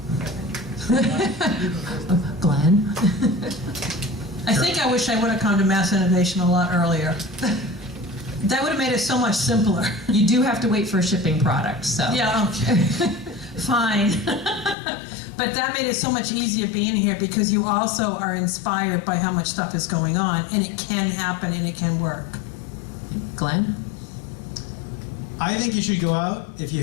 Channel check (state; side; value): drops out; right; at 14.8 s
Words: Glenn? I think I wish I would have come to Mass Innovation a lot earlier. That would have made it so much simpler. You do have to wait for a shipping product, so. Yeah, okay. Fine. But that made it so much easier being here because you also are inspired by how much stuff is going on, and it can happen and it can work. Glenn? I think you should go out, if you